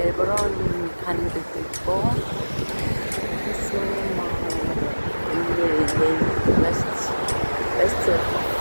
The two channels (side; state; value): both; inverted; correlation -1.00